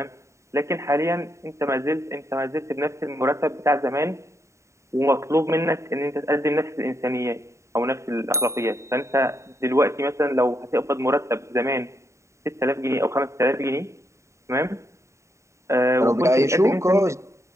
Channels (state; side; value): late; left; 0.14 ms